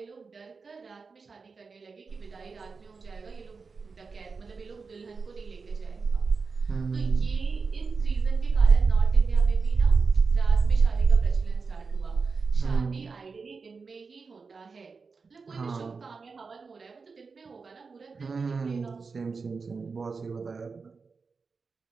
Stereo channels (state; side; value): quieter; left; 4.7 dB